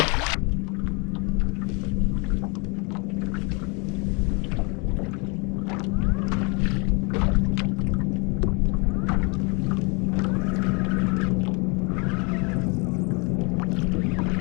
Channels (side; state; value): right; quieter; 31.2 dB